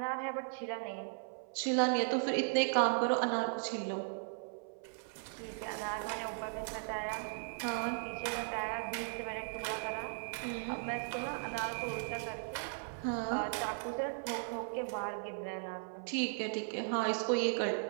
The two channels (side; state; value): left; silent; 53 dB below the other